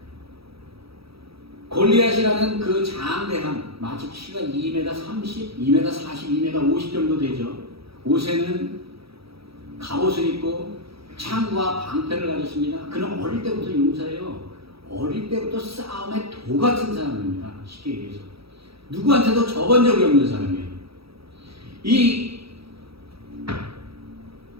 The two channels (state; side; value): late; left; 0.76 ms